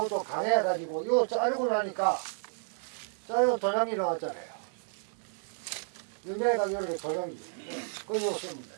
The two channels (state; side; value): silent; left; digital silence